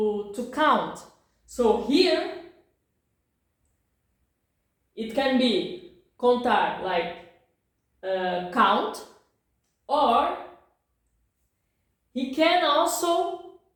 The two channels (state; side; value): identical; both; correlation 1.00